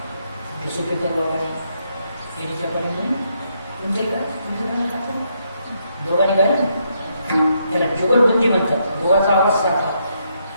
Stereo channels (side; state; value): both; inverted; correlation -0.77